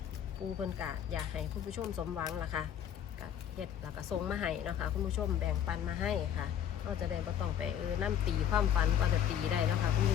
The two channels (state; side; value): quieter; right; 9.6 dB